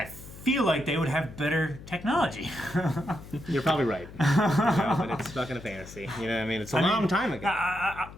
feel like they would have better technology. You're probably right. You know, but it's fucking a fantasy. You know what I mean? It's a long time ago.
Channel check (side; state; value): left; noise; hum, 16 dB below the sound